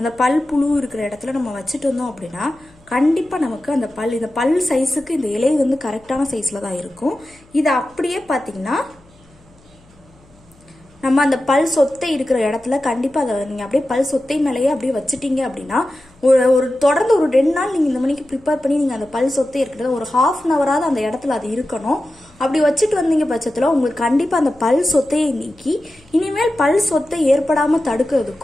பல் புழு இருக்கிற இடத்துல நம்ம வச்சுட்டு வந்தோம் அப்படின்னா கண்டிப்பாக நமக்கு அந்த இந்த பல் சைஸுக்கு இந்த இலை வந்து கரெக்டான சைஸில் தான் இருக்கும். இதை அப்படியே பார்த்தீங்கன்னா நம்ம அந்த பல் சொத்தை இருக்கிற இடத்துல கண்டிப்பாக அதை நீங்கள் அப்படியே பல் சொத்தை மேலேயே அப்படியே வச்சுட்டீங்க அப்படின்னா தொடர்ந்து ஒரு 2 நாள் நீங்கள் இந்த மணிக்கு ப்ரிப்பேர் பண்ணி நீங்கள் அந்த பல் சொத்தை இருக்கிறத ஒரு 1/2 ஹவராவது அந்த இடத்துல அது இருக்கணும். அப்படி வச்சுட்டு வந்தீங்க பட்சத்தில் உங்களுக்கு கண்டிப்பாக அந்த பல் சொத்தையை நீக்கி இனிமேல் பல் சொத்தை ஏற்படாமல்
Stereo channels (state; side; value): noise; left; hum, 29 dB below the sound